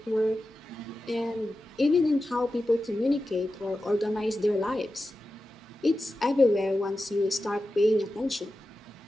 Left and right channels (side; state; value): both; normal; correlation 0.92